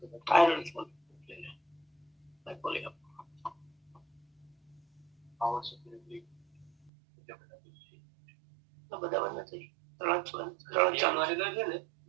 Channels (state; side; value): drops out; left; at 6.9 s